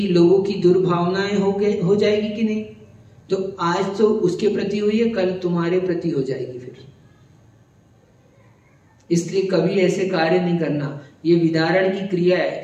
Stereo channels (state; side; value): identical; both; correlation 1.00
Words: लोगों की दुर्भावनाएं हो जाएगी कि नहीं, तो आज तो उसके प्रति हुई है, कल तुम्हारे प्रति हो जाएगी फिर। इसलिए कभी ऐसे कार्य नहीं करना। ये विदारण की क्रिया